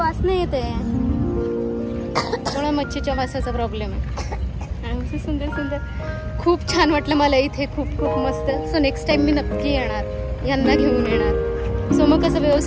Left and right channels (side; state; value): both; identical; correlation 1.00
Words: येते थोडा मच्छीच्या वासाचा प्रॉब्लेम आहे. सुंदर सुंदर खूप छान वाटलं मला इथे. खूप खूप मस्त. सो नेक्स्ट टाइम मी नक्की येणार, यांना घेऊन येणार. सो मग कसं